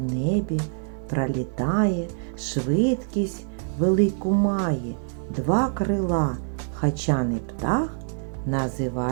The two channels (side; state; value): left; silent; 62 dB below the other